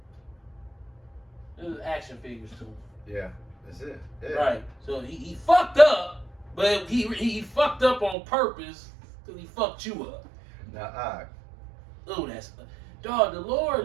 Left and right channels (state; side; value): drops out; left; at 8.2 s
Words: There's action figures too. Yeah, that's it. Yeah. Right. So he fucked up, but he fucked up on purpose because he fucked you up. Now, that's dog. The Lord